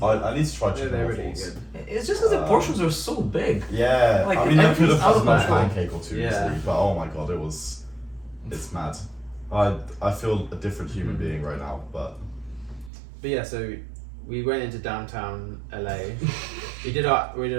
I need to try Yeah, chicken they're waffles. really good. It's just because the portions are so big. Yeah, Like, I mean, I could everything's have out had of a control. pancake or two Yeah. easily, but oh my god, it's mad. I feel a different human being right now, but But yeah, so we went into downtown LA. we did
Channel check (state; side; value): drops out; left; at 12.9 s